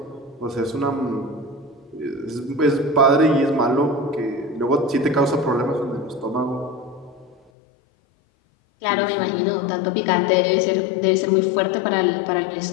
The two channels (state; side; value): drops out; right; at 7.4 s